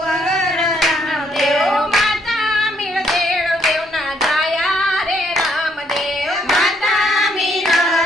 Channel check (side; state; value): both; normal; correlation 0.70